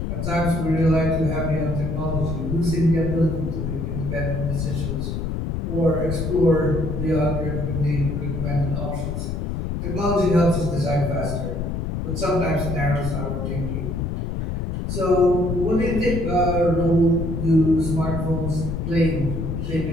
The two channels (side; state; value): left; noise; rumble, 2 dB below the sound